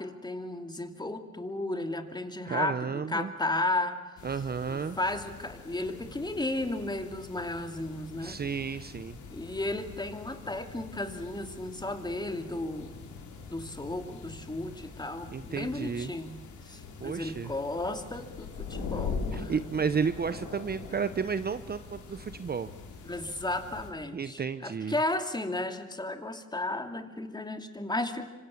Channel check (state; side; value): normal; both; correlation 0.43